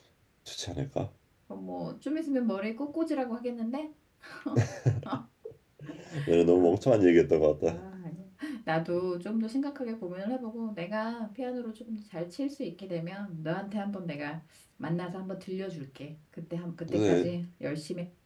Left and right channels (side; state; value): both; identical; correlation 1.00